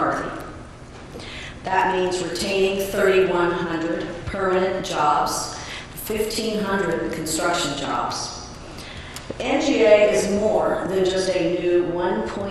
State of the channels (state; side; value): identical; both; correlation 1.00